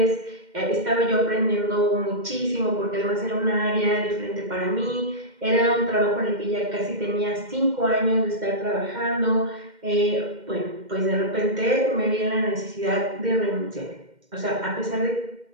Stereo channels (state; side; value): late; left; 2.1 ms